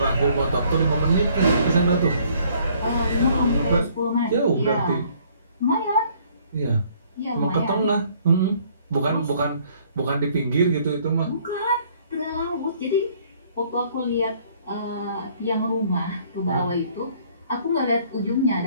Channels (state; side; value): inverted; both; correlation -0.61